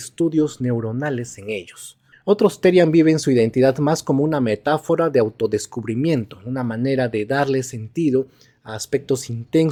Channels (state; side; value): identical; both; correlation 1.00